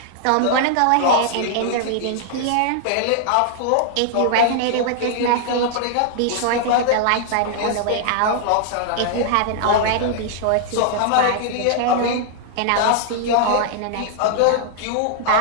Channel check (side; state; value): both; different; correlation -0.01